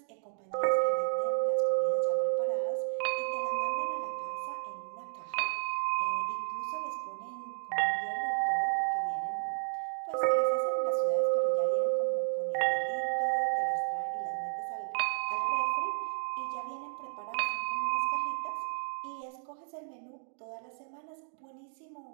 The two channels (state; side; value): silent; left; digital silence